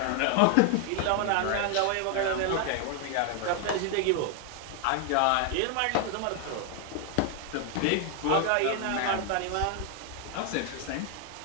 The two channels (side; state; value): both; different; correlation 0.00